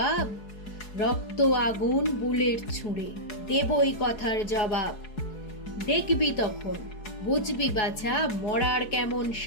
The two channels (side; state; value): right; late; 4.7 ms